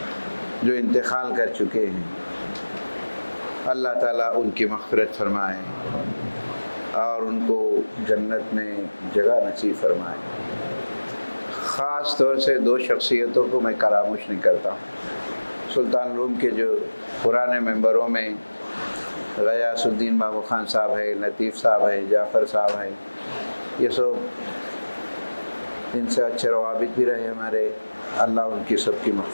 جو انتقال کر چکے ہیں، اللہ تعالیٰ ان کی مغفرت فرمائے اور ان کو جنت میں جگہ نصیب فرمائے. خاص طور سے دو شخصیتوں کو میں فراموش نہیں کرتا. سلطان علوم کے جو پرانے ممبروں میں غیاث الدین بابو خان صاحب ہے، لطیف صاحب ہے، جعفر صاحب ہے، یہ سب ان سے اچھے روابط بھی رہے ہمارے. اللہ ان کی سب کی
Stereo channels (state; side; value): inverted; both; correlation -1.00